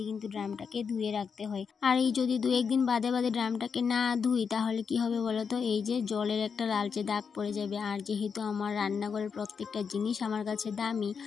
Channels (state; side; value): quieter; right; 6.1 dB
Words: কিন্তু ড্রামটাকে ধুয়ে রাখতে হয়। আর এই যদি 2-1 দিন বাদে বাদে ড্রামটাকে না ধুই তাহলে কি হবে বলো তো, এই যে জলের একটা লালচে দাগ পড়ে যাবে। আর যেহেতু আমার রান্নাঘরের প্রত্যেকটা জিনিস আমার কাছে দামি,